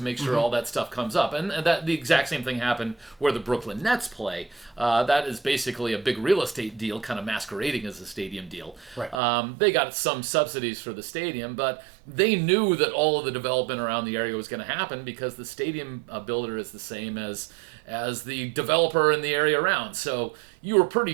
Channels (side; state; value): left; drops out; at 9.2 s